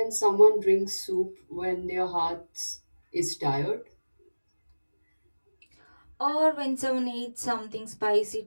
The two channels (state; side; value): inverted; both; correlation -1.00